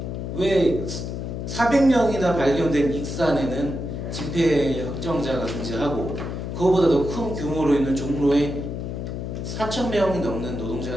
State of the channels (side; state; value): left; noise; hum, 5 dB below the sound